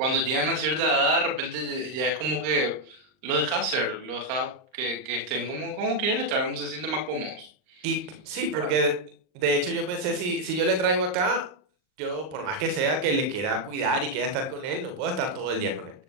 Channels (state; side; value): late; left; 39 ms